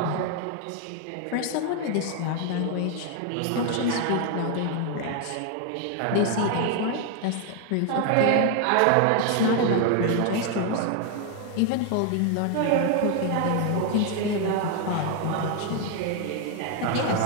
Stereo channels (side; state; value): both; different; correlation 0.00